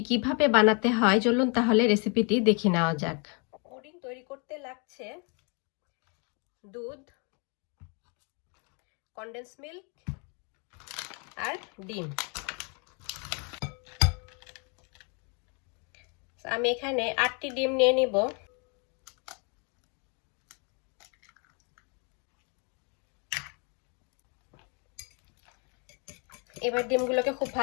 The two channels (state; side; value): quieter; right; 35.1 dB